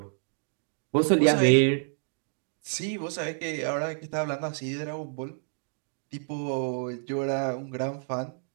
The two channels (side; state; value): left; silent; 59 dB below the other